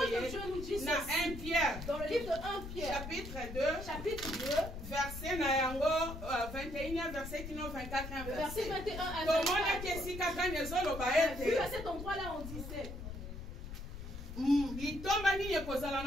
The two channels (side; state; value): left; noise; rumble, 9 dB below the sound